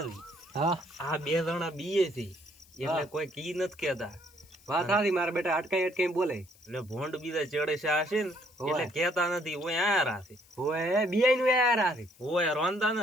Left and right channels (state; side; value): noise; left; hiss, 27 dB below the sound